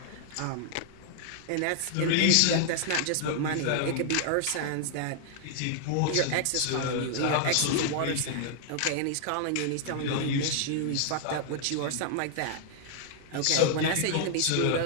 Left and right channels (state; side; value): different; both; correlation -0.01